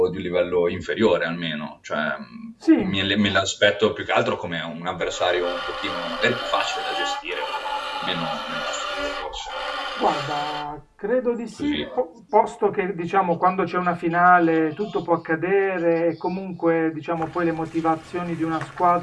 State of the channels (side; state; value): both; identical; correlation 1.00